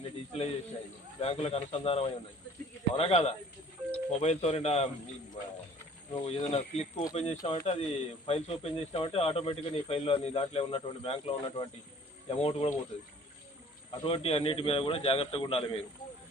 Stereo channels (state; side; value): normal; both; correlation 0.52